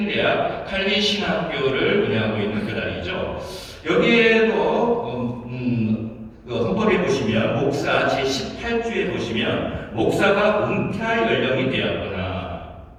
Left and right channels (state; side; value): identical; both; correlation 1.00